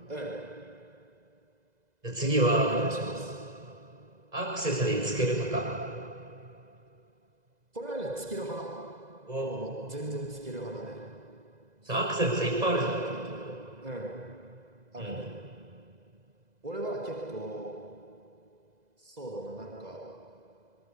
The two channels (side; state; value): left; late; 2.0 ms